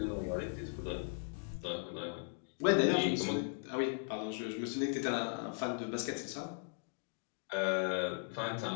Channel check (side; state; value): right; silent; 53 dB below the other